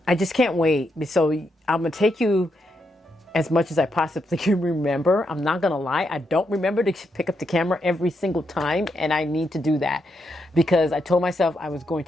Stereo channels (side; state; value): both; normal; correlation 0.81